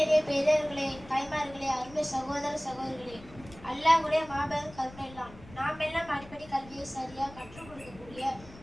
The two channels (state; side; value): noise; left; rumble, 19 dB below the sound